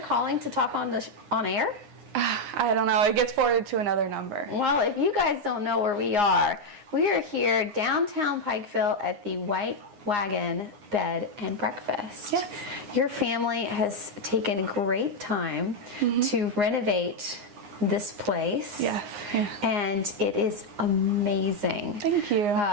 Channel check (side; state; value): left; late; 9.7 ms